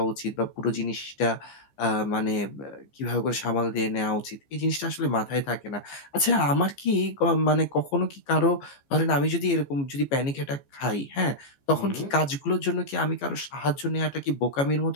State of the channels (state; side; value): late; right; 15 ms